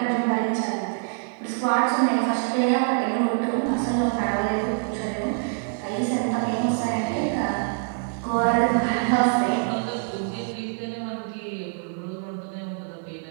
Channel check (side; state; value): left; silent; 56 dB below the other